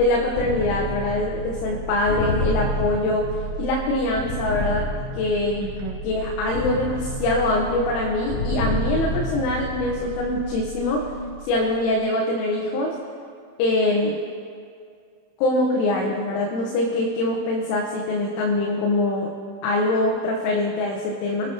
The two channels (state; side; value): late; right; 31 ms